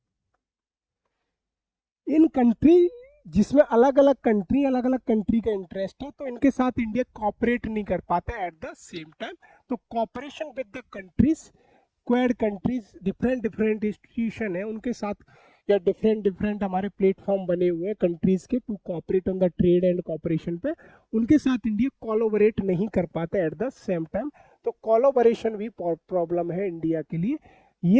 इन कंट्री जिसमें अलग अलग कंट्री का इंटरेस्ट है, तो इनके साथ इंडिया कॉपरेट नहीं कर पाता एट द सेम टाइम। तो cooperation with the countries, Quad countries, different different institution है उनके साथ, या डिफरेंट डिफरेंट हमारे प्लेटफॉर्म बने हुए हैं कंट्रीज के to cooperate on the trade and cooperation पे, उनके साथ इंडिया कोलैबोरेट नहीं कर पाता एट द सेम टाइम। तो कोलैबोरेशन भी प्रॉब्लम है इंडिया के लिए।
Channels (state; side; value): identical; both; correlation 1.00